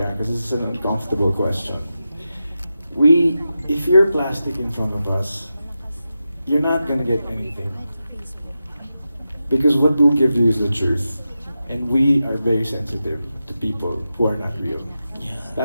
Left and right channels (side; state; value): both; inverted; correlation -0.91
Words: because this is an uncomfortable question. If you're plastic in front of us, you're not gonna get anything. Because what we'll give you is the truth. And we are very sensitive to people who are not real.